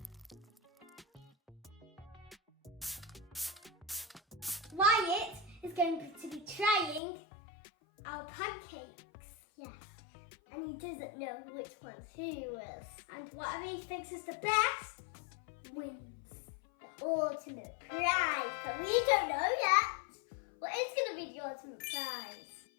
Wyatt is going to be trying our pancakes. Yeah. And he doesn't know which one's who is. And whatever he thinks is the best wins. The ultimate prize. But we don't know yet. What is going to be the ultimate prize?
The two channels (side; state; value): right; drops out; at 7.0 s